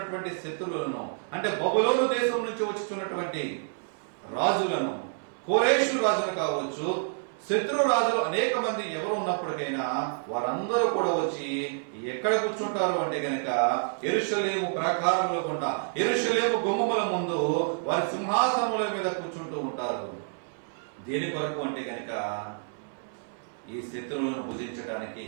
శత్రువులను, అంటే బబులోను దేశం నుంచి వచ్చుచున్నటువంటి రాజులను, కోరేషు రాజును కావచ్చు, శత్రు రాజులు అనేక మంది ఎవరు ఉన్నప్పటికైనా వారందరూ కూడా వచ్చి ఎక్కడ కూర్చుంటారు అంటే గనక యెరూషలేము ప్రాకారముల గుండా, యెరూషలేము గుమ్మముల ముందు వారి సింహాసనముల మీద కూర్చుంటూ ఉంటారు. దేని కొరకు అంటే గనక ఈ శత్రువులను భుజించడానికి.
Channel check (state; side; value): silent; left; digital silence